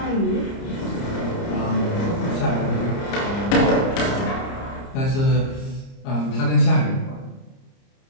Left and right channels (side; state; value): right; late; 30 ms